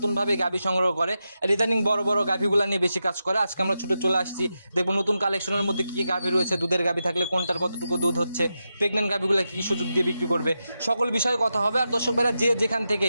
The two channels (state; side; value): inverted; both; correlation -0.89